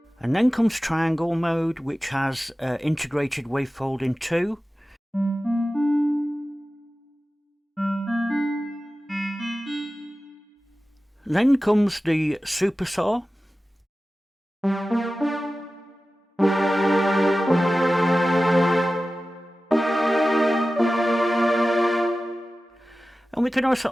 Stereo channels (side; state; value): both; normal; correlation 0.95